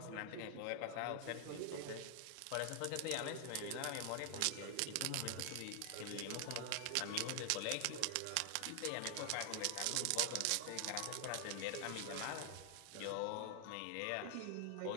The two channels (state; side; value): different; both; correlation 0.00